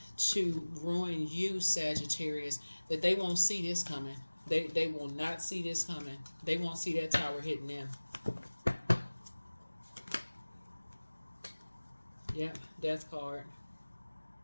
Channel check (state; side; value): inverted; both; correlation -1.00